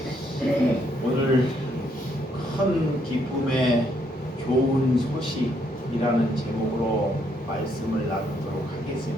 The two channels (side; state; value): both; normal; correlation 0.73